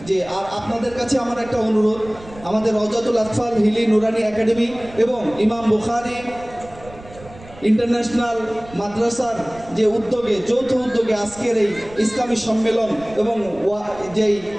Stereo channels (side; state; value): right; noise; rumble, 19 dB below the sound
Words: যে আর আপনাদের কাছে আমার একটা অনুরোধ, আমাদের রওজাতুল আতফাল হিলি নুরানি একাডেমি এবং ইমাম বুখারী ইন্টারন্যাশনাল মাদ্রাসার যে উদ্যোগে, যৌথ উদ্যোগে আজকের এই ইসলামী সম্মেলন এবং যেই